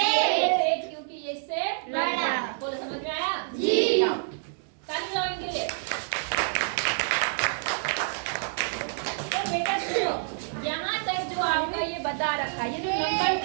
क्योंकि ये इससे बड़ा। बोलो, समझ में आया? जाओ, ताली बजाओ इनके लिए। तो बेटा सुनो, यहाँ तक जो आपका ये बता रखा, ये जो नंबर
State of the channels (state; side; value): silent; left; digital silence